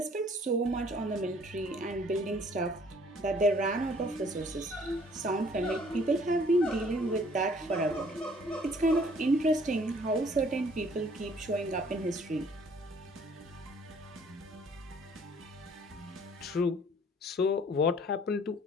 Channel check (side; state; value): both; normal; correlation 0.58